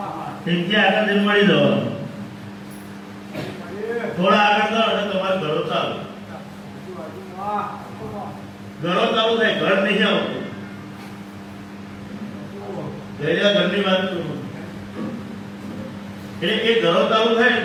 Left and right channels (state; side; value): identical; both; correlation 1.00